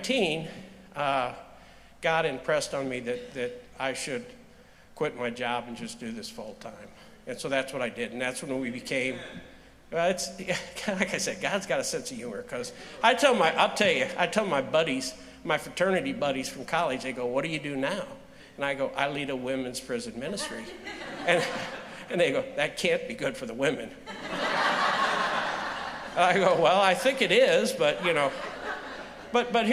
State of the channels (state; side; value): identical; both; correlation 1.00